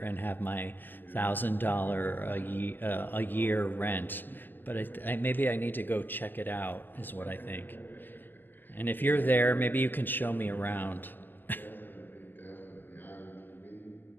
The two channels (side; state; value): right; late; 0.090 ms